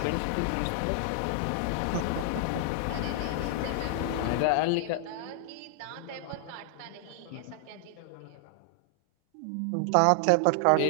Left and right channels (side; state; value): both; different; correlation 0.00